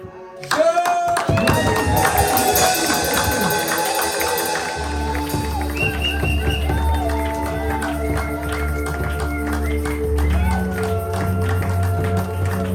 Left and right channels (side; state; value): both; identical; correlation 1.00